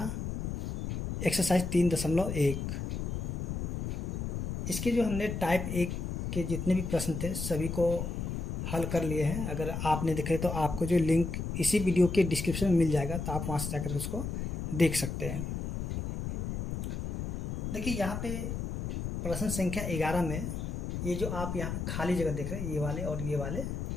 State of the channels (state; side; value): noise; left; rumble, 3 dB below the sound